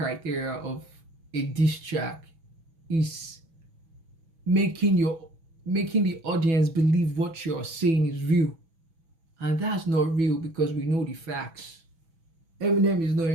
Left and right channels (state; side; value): late; left; 6.1 ms